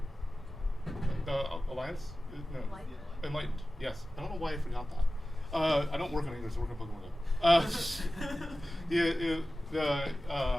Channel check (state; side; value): normal; both; correlation 0.96